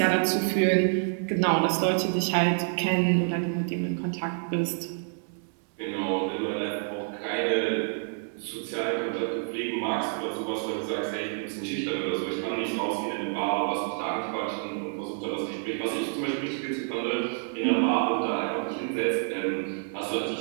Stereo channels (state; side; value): silent; left; 59 dB below the other